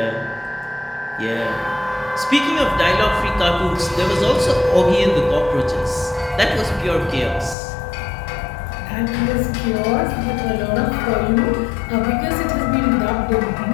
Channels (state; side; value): drops out; right; at 7.6 s